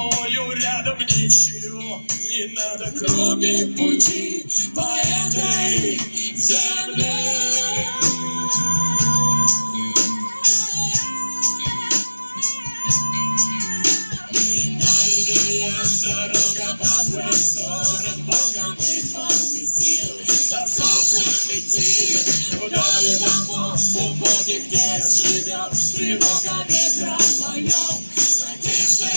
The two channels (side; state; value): both; inverted; correlation -1.00